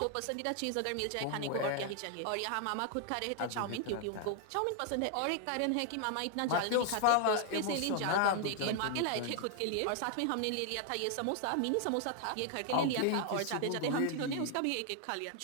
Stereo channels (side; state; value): both; different; correlation 0.00